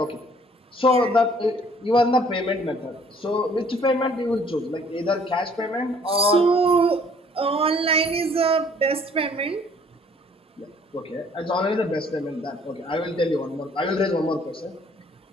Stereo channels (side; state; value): both; normal; correlation 0.59